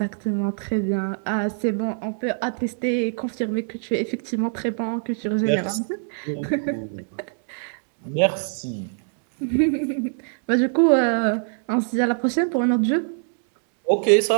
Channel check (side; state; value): left; silent; digital silence